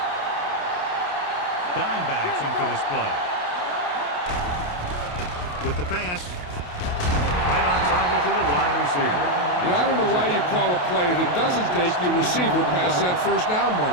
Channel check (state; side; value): late; right; 28 ms